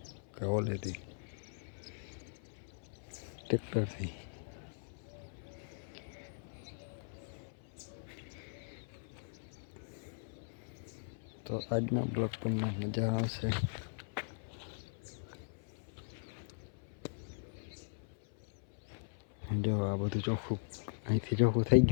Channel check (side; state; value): right; silent; 52 dB below the other